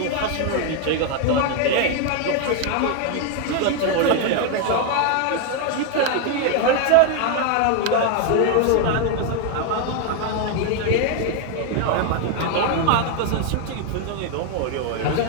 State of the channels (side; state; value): both; different; correlation 0.01